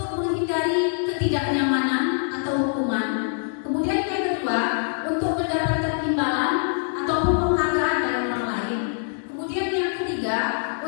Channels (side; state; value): right; silent; digital silence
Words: ketidaknyamanan atau hukuman. Kemudian yang kedua, untuk mendapatkan imbalan ataupun penghargaan dari orang lain. Kemudian yang ketiga,